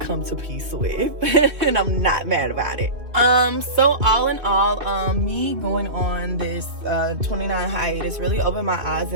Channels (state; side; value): late; left; 2.4 ms